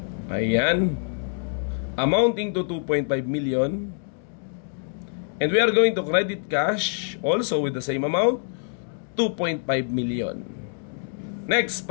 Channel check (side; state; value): right; silent; digital silence